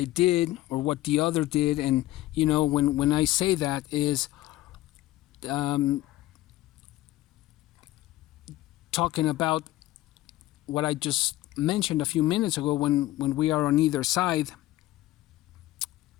did or what the other did. And, when I say that is talking about what I just mentioned a few minutes ago, when we are on either side,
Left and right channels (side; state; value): right; quieter; 16.2 dB